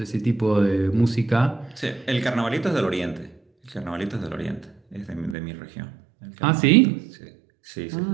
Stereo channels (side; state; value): left; drops out; at 5.4 s